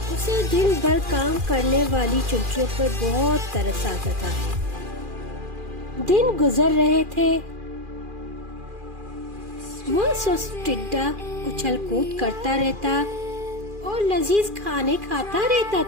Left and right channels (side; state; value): left; late; 2.4 ms